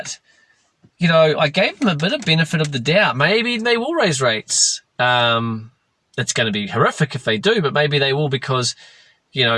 I gave them a bit of benefit of the doubt. Maybe they will raise rates. It's going to be horrific if they do, but maybe they will, because,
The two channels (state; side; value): identical; both; correlation 1.00